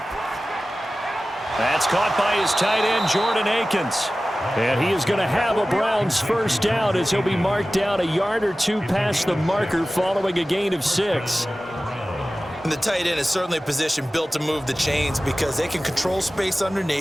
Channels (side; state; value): both; normal; correlation 0.96